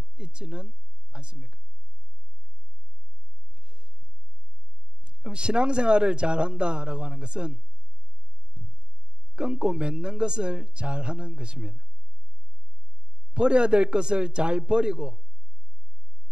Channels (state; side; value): late; left; 0.050 ms